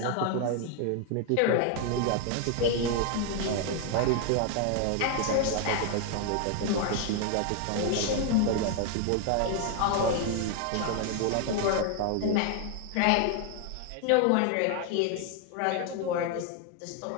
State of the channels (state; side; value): different; both; correlation 0.00